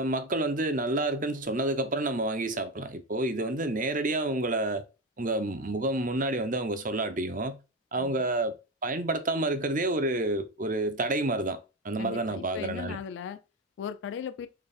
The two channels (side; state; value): both; normal; correlation 0.17